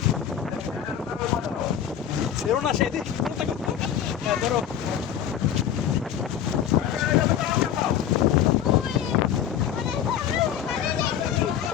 সেও না সেদিন ধরো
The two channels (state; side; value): quieter; right; 9.6 dB